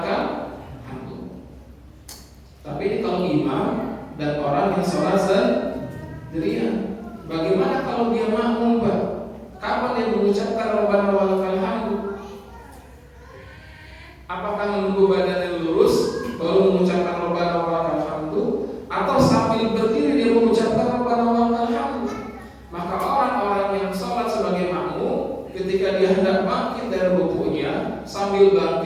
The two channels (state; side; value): identical; both; correlation 1.00